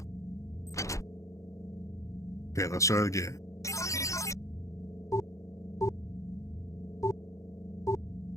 Okay, let's try it again.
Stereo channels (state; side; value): late; right; 0.15 ms